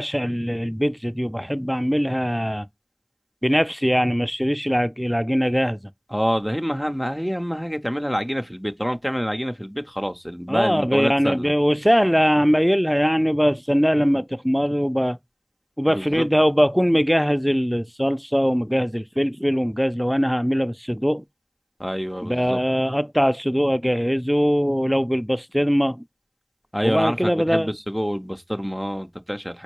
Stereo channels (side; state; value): both; identical; correlation 1.00